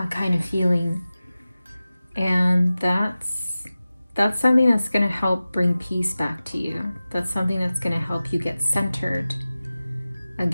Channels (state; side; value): inverted; both; correlation -0.96